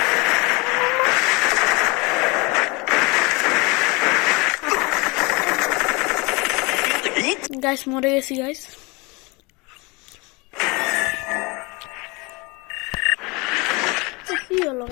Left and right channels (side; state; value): right; quieter; 26.8 dB